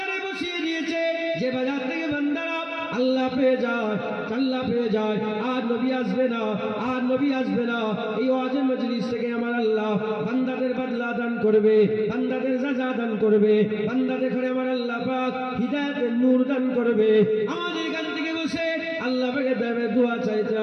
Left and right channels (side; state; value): both; identical; correlation 1.00